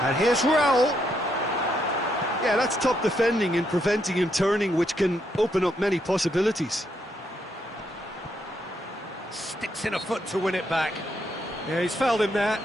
And here's Raúl. Yeah, that's top defending and preventing him turning, which can open up many possibilities. Sticks in a foot to win it back. Yeah, he's fouled him there.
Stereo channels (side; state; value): both; normal; correlation 0.77